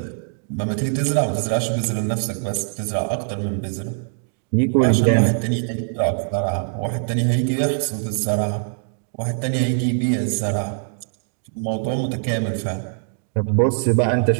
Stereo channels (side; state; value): left; silent; digital silence